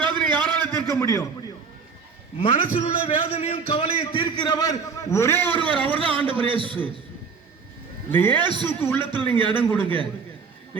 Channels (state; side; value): quieter; left; 5.5 dB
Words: வேதனை யாரால தீர்க்க முடியும்? மனசில் உள்ள வேதனையும் கவலையை தீர்க்கிறவர் ஒரே ஒருவர், அவர் தான் ஆண்டவர் இயேசு. இந்த இயேசுக்கு உள்ளத்தில் நீங்க இடம் கொடுங்க.